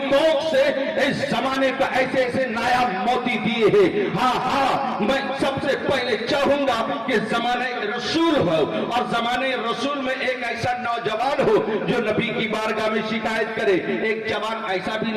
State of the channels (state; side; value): identical; both; correlation 1.00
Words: کوکھ سے اس زمانے کا ایسے ایسے نایاب موتی دیے ہیں. ہاں ہاں میں سب سے پہلے چاہوں گا کہ زمانے رسول ہو, اور زمانے رسول میں ایک ایسا نوجوان ہو جو نبی کی بارگاہ میں شکایت کرے. ایک جوان ایسا بھی